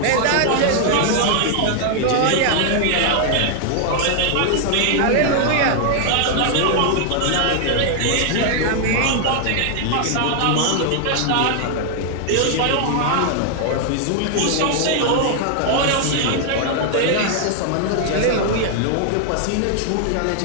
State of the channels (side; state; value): both; different; correlation 0.00